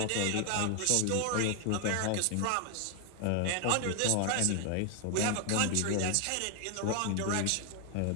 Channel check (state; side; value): different; both; correlation 0.00